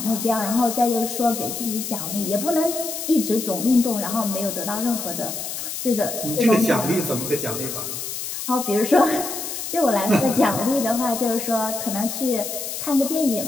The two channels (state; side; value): noise; left; hiss, 6 dB below the sound